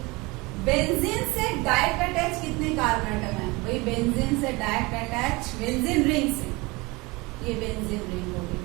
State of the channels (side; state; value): left; quieter; 24.4 dB